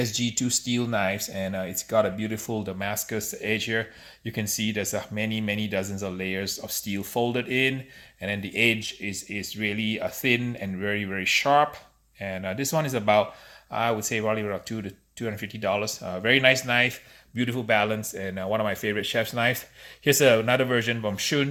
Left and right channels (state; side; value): identical; both; correlation 1.00